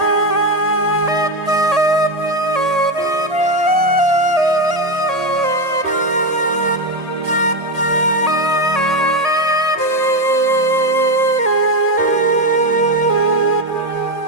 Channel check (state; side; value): late; left; 1.8 ms